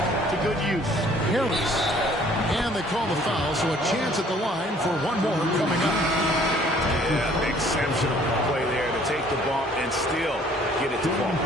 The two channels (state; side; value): normal; both; correlation 0.57